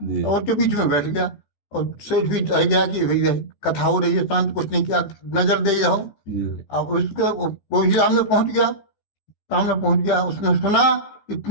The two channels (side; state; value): right; late; 14 ms